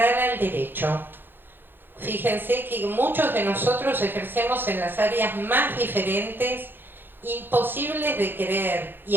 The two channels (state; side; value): late; left; 0.098 ms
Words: al derecho. Fíjense que muchos de nosotros ejercemos en las áreas más diferentes, imposibles de creer, y